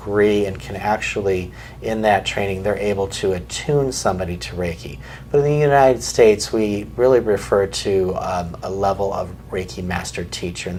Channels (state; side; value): identical; both; correlation 1.00